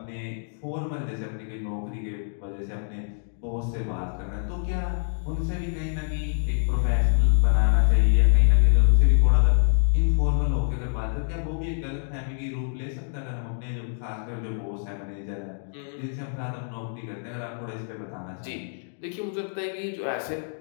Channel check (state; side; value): silent; right; digital silence